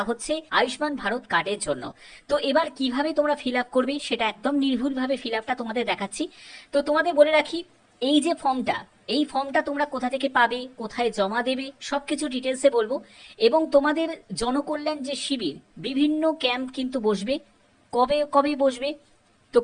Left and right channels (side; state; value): both; identical; correlation 1.00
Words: হচ্ছে আয়ুষ্মান ভারত কার্ডের জন্য। তো এবার কিভাবে তোমরা ফিল আপ করবে সেটা একদম নির্ভুলভাবে ফিল আপটা তোমাদের দেখাচ্ছি। তো তোমাদের বলে রাখি, এই যে এই ফর্মটা তোমরা কোথা থেকে পাবে, কোথায় জমা দেবে, সবকিছু ডিটেলসে বলবো। এবং তোমাদের জনকল্যাণ যে শিবির, বিভিন্ন ক্যাম্প কিন্তু বসবে। কবে কবে বসবে? তো